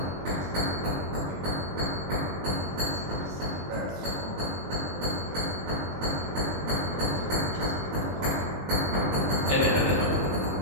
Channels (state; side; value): late; left; 21 ms